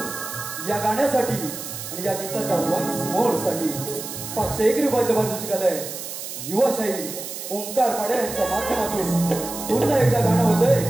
या गाण्यासाठी आणि या गीताच्या वन्स मोर साठी 501 रुपयाचं पारितोषिक आलंय. युवाशाही ओंकार पाडे यांच्या माध्यमातून पुन्हा एकदा गाणं होतंय,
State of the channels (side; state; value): right; noise; hiss, 8 dB below the sound